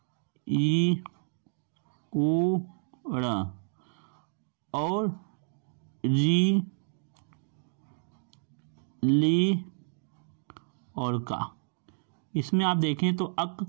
ई, उ, ड़ और री, ली और का। इसमें आप देखें तो अक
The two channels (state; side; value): silent; left; digital silence